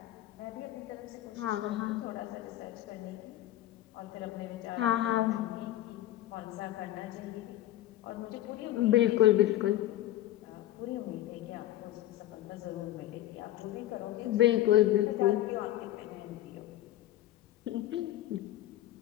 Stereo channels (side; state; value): right; quieter; 14.1 dB